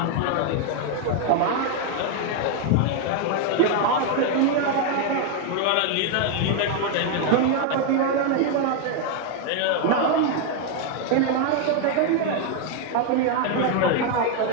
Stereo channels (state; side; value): different; both; correlation 0.01